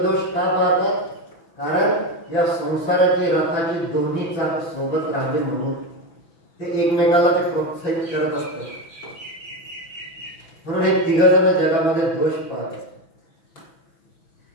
दोष का पाहतात? कारण या संसाराची रथाची दोन्ही चाक सोबत राहावे म्हणून ते एकमेकाला ते प्रोत्साहित करत असतात. म्हणून हे 3 जण जगामध्ये दोष पाहतात.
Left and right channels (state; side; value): late; right; 6.1 ms